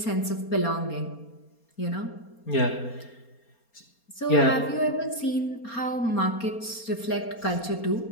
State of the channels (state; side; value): late; right; 4.3 ms